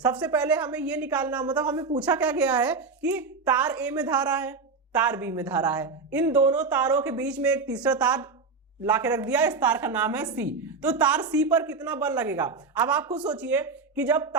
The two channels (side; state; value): left; quieter; 4.4 dB